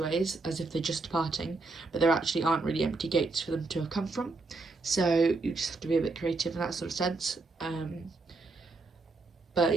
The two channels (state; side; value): quieter; left; 3.6 dB